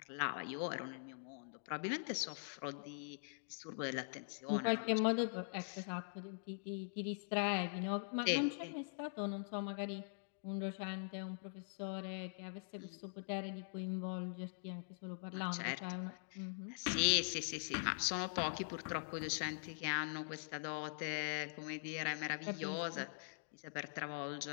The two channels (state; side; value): silent; right; digital silence